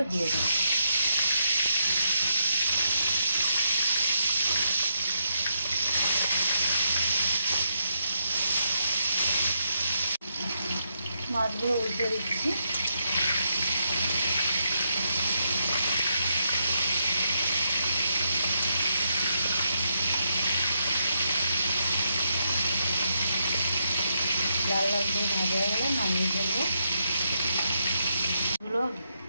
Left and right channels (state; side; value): inverted; both; correlation -0.80